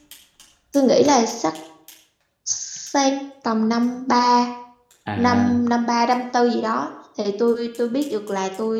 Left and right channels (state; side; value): identical; both; correlation 1.00